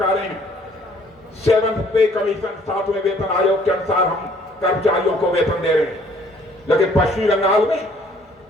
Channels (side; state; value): both; normal; correlation 0.60